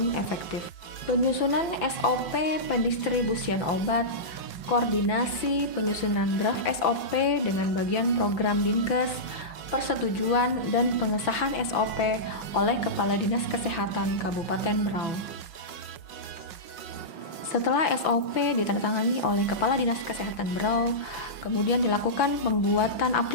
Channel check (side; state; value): right; late; 5.9 ms